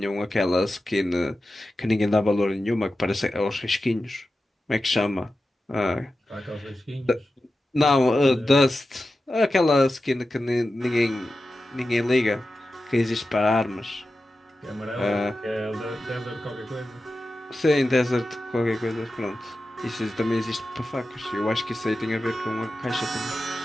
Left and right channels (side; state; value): both; normal; correlation 0.93